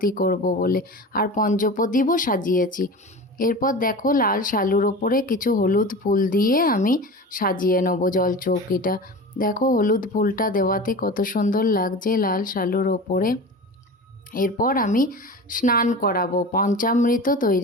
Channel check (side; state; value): both; normal; correlation 0.33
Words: করব বলে, আর পঞ্চপ্রদীপও সাজিয়েছি। এরপর দেখো, লাল শালুর ওপরে কিছু হলুদ ফুল দিয়ে আমি সাজিয়ে নেবো জলচৌকিটা। দেখো, হলুদ ফুলটা দেওয়াতে কত সুন্দর লাগছে লাল শালুর ওপরে। এরপর আমি স্নান করাবো। পঞ্চামৃত